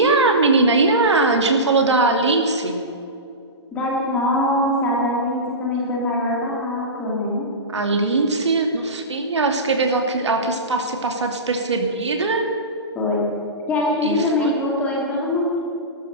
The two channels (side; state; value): both; normal; correlation -0.20